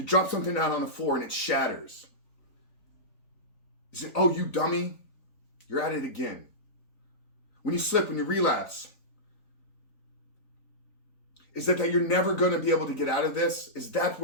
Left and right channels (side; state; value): right; late; 3.9 ms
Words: drop something out on the floor and it shatters, is it, oh, you dummy, you're at it again? When you slip, when you relapse, is that you're never going to be able to get out of this? Is that